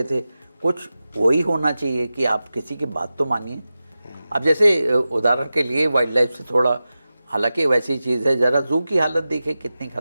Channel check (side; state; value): both; inverted; correlation -0.94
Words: थे, कुछ वही होना चाहिए कि आप किसी की बात तो मानिए। अब जैसे उदाहरण के लिए वाइल्ड लाइफ से थोड़ा, हालांकि वैसी चीज़ है, ज़रा जू की हालत देखिए कितनी